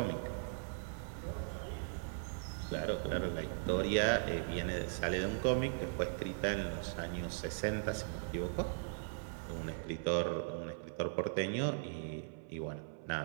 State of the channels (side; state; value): left; silent; 52 dB below the other